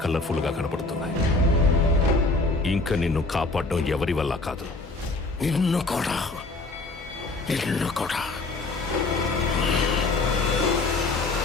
కలర్ఫుల్ గా కనపడుతున్నాయి. ఇంకా నిన్ను కాపాడడం ఎవరి వల్ల కాదు. నిన్ను కూడా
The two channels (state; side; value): quieter; right; 3.4 dB